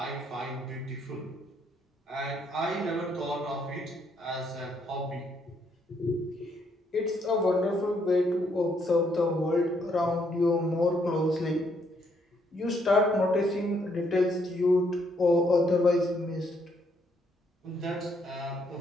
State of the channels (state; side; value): normal; both; correlation 0.72